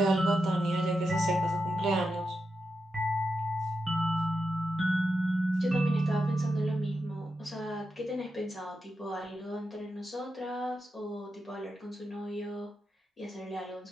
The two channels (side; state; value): both; normal; correlation 0.87